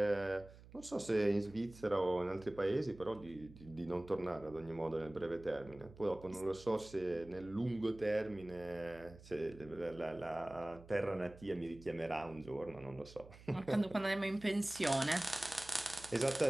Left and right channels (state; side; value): noise; right; hum, 19 dB below the sound